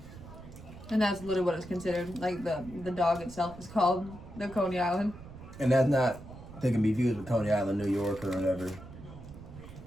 And that's literally what it's considered. Like the dog itself is called the Coney Island. And that's not, they can be viewed with Coney Island, New York or whatever.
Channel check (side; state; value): right; noise; rumble, 15 dB below the sound